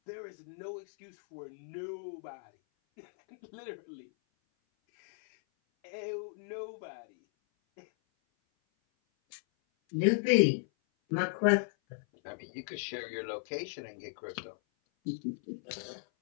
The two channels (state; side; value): silent; right; 54 dB below the other